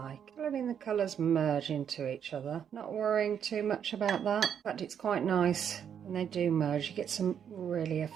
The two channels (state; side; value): quieter; left; 8.4 dB